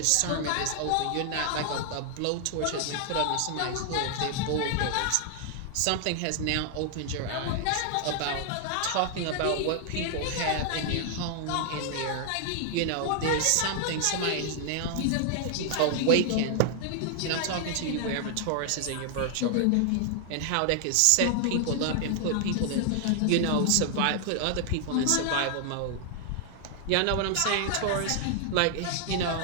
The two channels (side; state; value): both; different; correlation 0.00